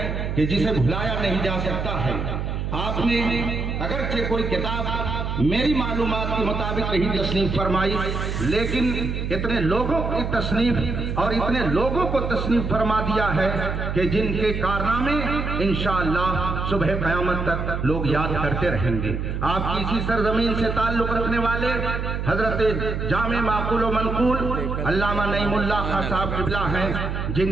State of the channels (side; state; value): right; noise; hum, 3 dB below the sound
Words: कि जिसे भुलाया नहीं जा सकता है। आपने अगरचे कोई किताब मेरी मालूमात के मुताबिक नहीं तस्नीफ फरमाई, लेकिन इतने लोगों की तस्नीफ और इतने लोगों को तस्नीफ फरमा दिया है कि जिनके कारनामे इंशाअल्लाह सुबह क़यामत तक लोग याद करते रहेंगे। आपकी इसी सरजमीन से ताल्लुक रखने वाले हजरत जामे माकूल व मनकूल अल्लामा नईमुल्लाह खां साहब किबला हैं,